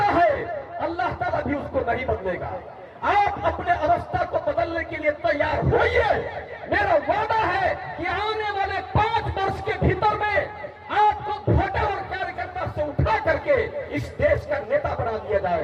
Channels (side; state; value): both; identical; correlation 1.00